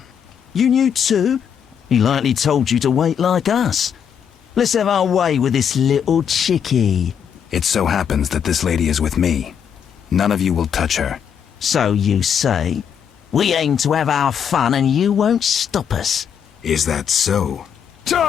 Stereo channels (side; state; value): right; quieter; 7.9 dB